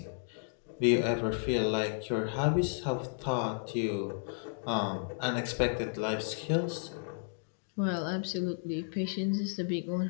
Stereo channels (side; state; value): right; silent; digital silence